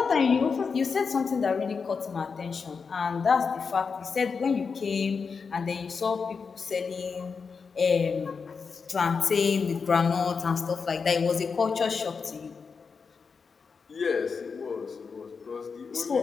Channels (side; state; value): right; quieter; 5.4 dB